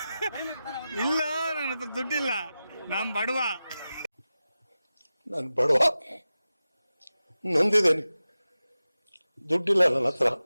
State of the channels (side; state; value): both; inverted; correlation -0.94